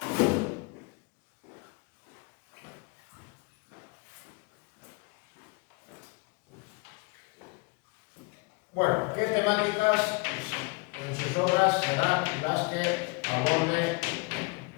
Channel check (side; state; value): right; quieter; 29.0 dB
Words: Bueno, ¿qué temáticas en sus obras serán las que aborde